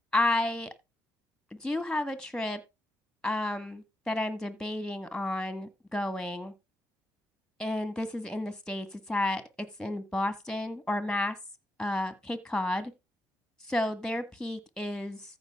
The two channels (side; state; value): both; normal; correlation 0.86